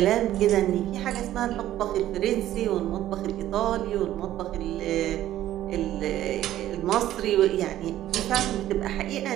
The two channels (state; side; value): quieter; left; 13.2 dB